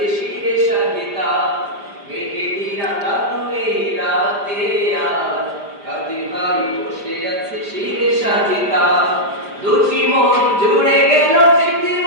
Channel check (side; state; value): left; late; 5.0 ms